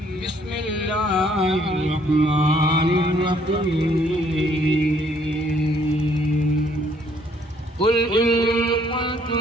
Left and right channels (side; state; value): both; normal; correlation 0.65